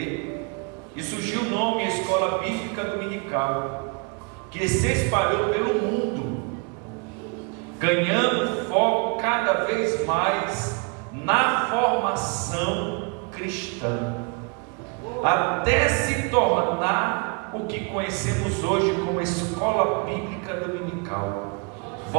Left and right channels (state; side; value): quieter; left; 33.8 dB